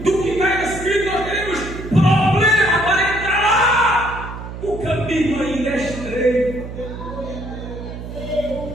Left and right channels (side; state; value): right; noise; hum, 10 dB below the sound